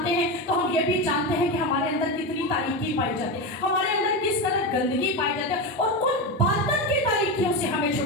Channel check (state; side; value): normal; both; correlation 0.17